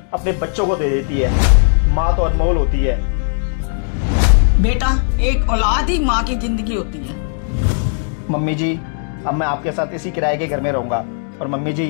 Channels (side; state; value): right; silent; digital silence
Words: अपने बच्चों को दे देती है। माँ तो अनमोल होती है। बेटा, एक औलाद ही माँ की जिंदगी होती है। मम्मी जी, अब मैं आपके साथ इसी किराए के घर में रहूंगा। और मम्मी